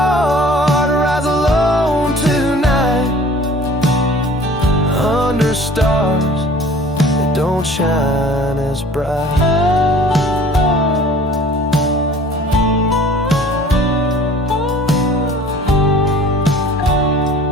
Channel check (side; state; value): both; normal; correlation 0.48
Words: rides alone tonight, under stars that don't shine as bright.